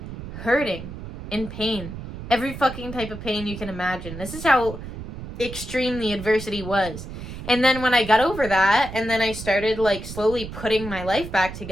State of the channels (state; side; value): noise; right; rumble, 10 dB below the sound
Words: hurting, in pain. Every fucking type of pain you can imagine. This is how extreme the adversity was. And then when I got over that, and then I started, like, slowly putting my life back